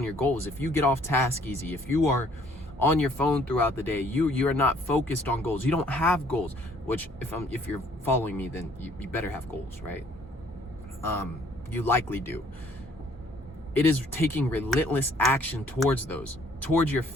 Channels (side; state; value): both; normal; correlation 0.61